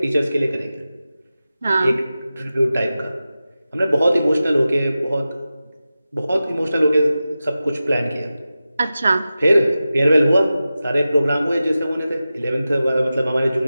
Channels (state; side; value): inverted; both; correlation -0.94